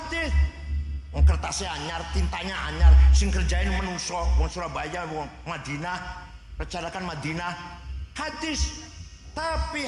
Kertasnya anyar, tintanya anyar, sing kerjain menungso wong Surabaya, wong Madinah, rencanakan Madinah. Hadis. Tapi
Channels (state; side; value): identical; both; correlation 1.00